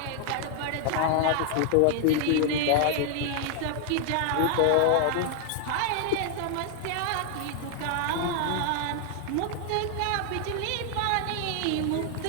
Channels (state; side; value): different; both; correlation 0.00